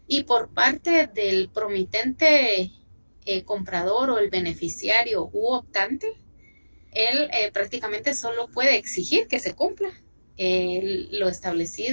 Y por parte del promitente comprador o el beneficiario u optante, él prácticamente solo puede exigir que se cumpla lo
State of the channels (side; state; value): both; inverted; correlation -1.00